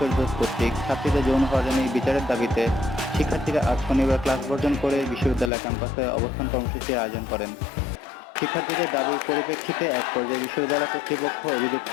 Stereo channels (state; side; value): drops out; right; at 5.5 s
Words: কর্তৃক ছাত্রীদের যৌন হয়রানির বিচারের দাবিতে শিক্ষার্থীরা আজ শনিবার ক্লাস বর্জন করে বিশ্ববিদ্যালয় ক্যাম্পাসে অবস্থান কর্মসূচির আয়োজন করেন। শিক্ষার্থীদের দাবির পরিপ্রেক্ষিতে এক পর্যায়ে বিশ্ববিদ্যালয় কর্তৃপক্ষ অভিযুক্ত